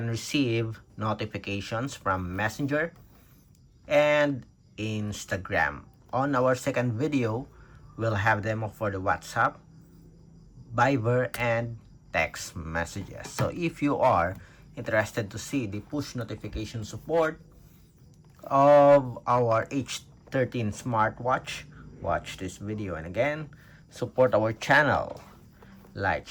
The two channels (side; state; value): both; identical; correlation 1.00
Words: receive notifications from Messenger and Instagram. On our second video, we'll have demo for the WhatsApp, Viber, and text messages. So if you are interested to see the push notification support of our H13 smartwatch, watch this video. And again, support our channel, like,